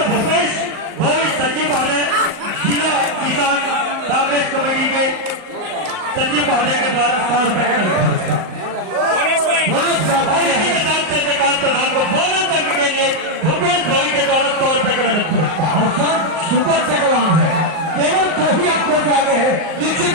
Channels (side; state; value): left; late; 38 ms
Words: कांग्रेस कमेटी के सचिव महोदय के द्वारा 100 रुपए का नगद पुरस्कार। और इसी के साथ चंद्रकांत प्रधान को बोनस करने के लिए भूपेश भाई के द्वारा 100 रुपए का नगद पुरस्कार। और सर सुपर टेकवान है, केवल 2 ही आंखों से आगे है। निश्चित